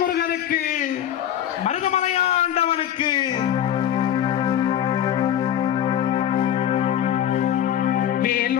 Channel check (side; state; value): right; quieter; 10.5 dB